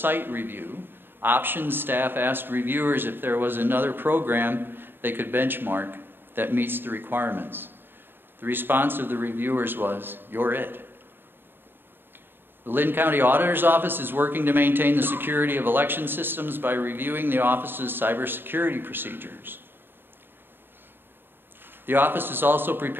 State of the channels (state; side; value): late; left; 0.099 ms